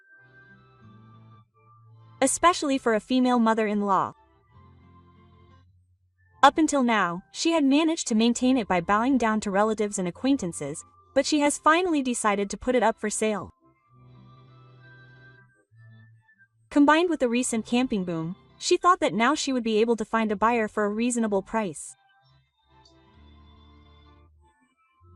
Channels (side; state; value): both; identical; correlation 1.00